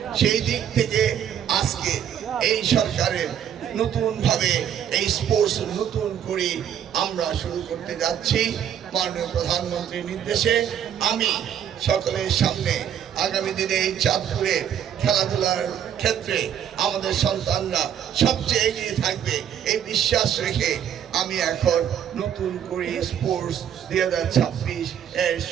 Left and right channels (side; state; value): left; quieter; 9.3 dB